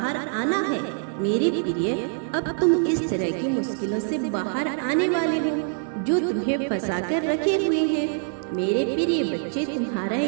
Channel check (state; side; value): silent; left; 58 dB below the other